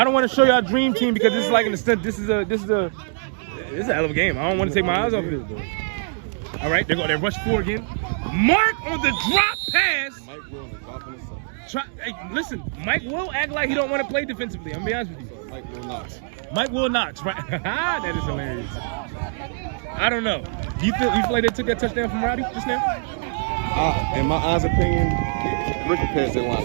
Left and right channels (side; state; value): left; silent; digital silence